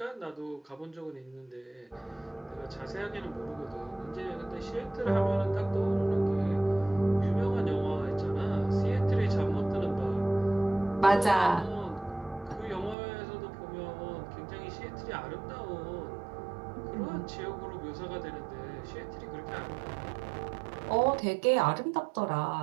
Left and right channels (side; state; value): left; drops out; at 13.0 s